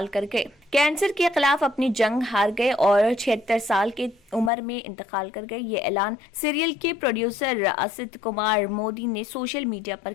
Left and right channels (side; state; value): right; drops out; at 4.5 s